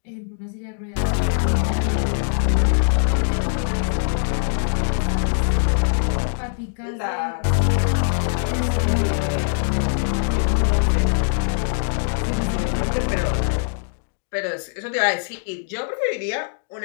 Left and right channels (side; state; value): right; silent; digital silence